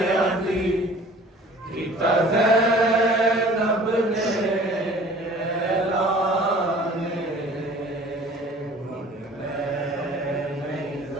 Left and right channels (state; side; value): normal; both; correlation 0.48